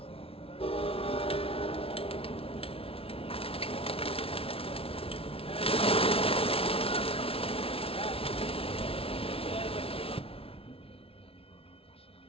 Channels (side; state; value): right; late; 0.27 ms